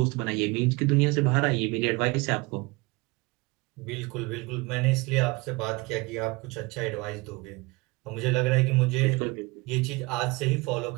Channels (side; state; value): left; quieter; 24.9 dB